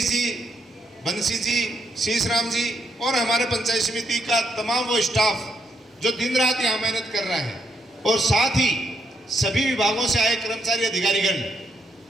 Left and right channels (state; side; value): normal; both; correlation 0.76